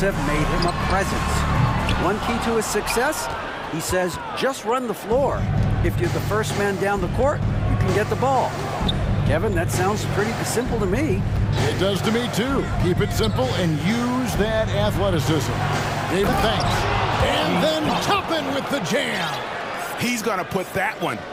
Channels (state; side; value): identical; both; correlation 1.00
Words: made him a presence. One key to his success, he says, just run the floor. If you're the first man down the court, you can get the ball. Kevin, that sounds pretty simple to me. It does to me, too. Keep it simple and use that athleticism. David, thanks. And then Toppin with the jam. He's going to put that one